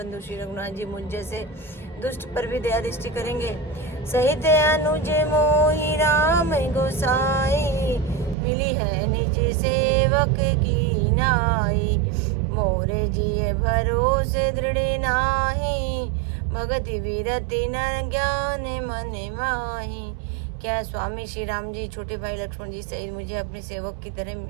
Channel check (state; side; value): drops out; left; at 8.3 s